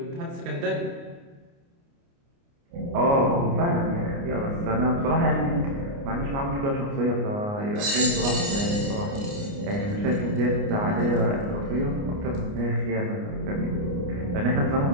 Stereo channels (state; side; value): late; left; 29 ms